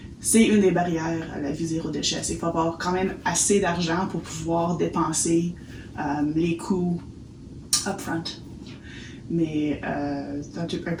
c'est une des barrières à la vie zéro déchet. C'est qu'il faut avoir quand même assez d'argent pour pouvoir dépenser les coûts upfront. Mais c'est un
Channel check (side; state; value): both; identical; correlation 1.00